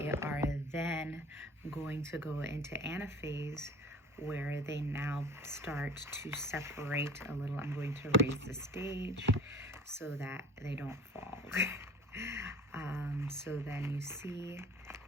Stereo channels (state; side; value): normal; both; correlation 0.44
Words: are then going to go into anaphase, where they now start to separate a little. I'm going to raise the stage so that they don't fall. So then you see